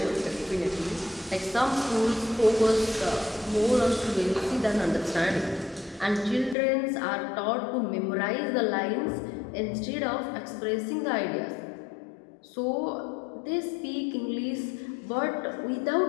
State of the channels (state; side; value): drops out; right; at 6.6 s